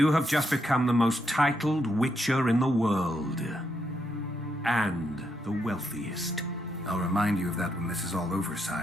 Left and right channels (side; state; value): both; normal; correlation 0.79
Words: have just become the most titled witcher in the world. And the wealthiest. I'll remind you of that when this is all over,